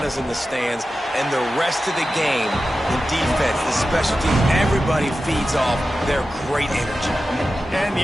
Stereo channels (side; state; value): both; normal; correlation 0.93